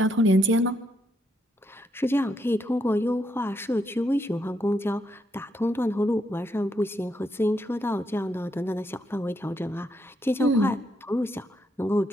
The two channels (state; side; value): normal; both; correlation 0.78